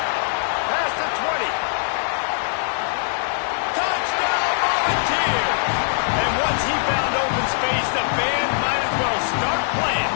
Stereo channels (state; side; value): silent; right; digital silence